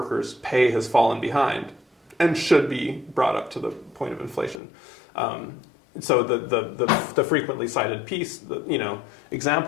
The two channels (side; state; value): right; drops out; at 4.6 s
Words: pay has fallen behind, and should be brought up to the point of inflation. So the frequently cited